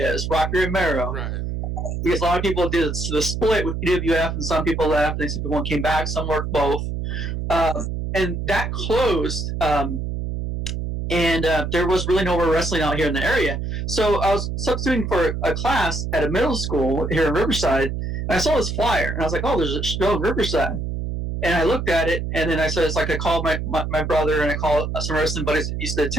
Rocky Romero. Right. Because a lot of people did the split with EWF, and some people left, and some people came back. Some worked both. Mm-hmm. And that closed, and there was really no more wrestling out here in the area. So I was substituting for a class at a middle school here in Riverside, and I saw this flyer, and I was like, oh, there's a show in Riverside. And I looked at it, and then I said, I called my brother, and I called some wrestling buddies that used to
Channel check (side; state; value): right; noise; hum, 3 dB below the sound